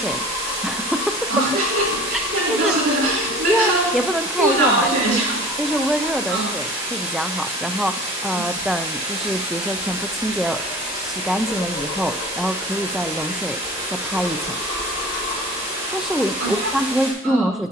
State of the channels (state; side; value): normal; both; correlation 0.42